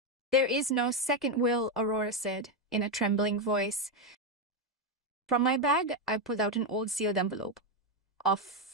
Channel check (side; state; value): both; normal; correlation 0.06